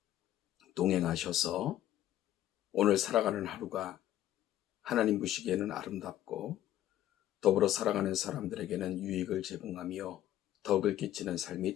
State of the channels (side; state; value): right; quieter; 12.7 dB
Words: 동행하셔서 오늘 살아가는 하루가 하나님 보시기에는 아름답고 더불어 살아가는 사람들에게는 유익을 제공하며 덕을 끼치는 삶이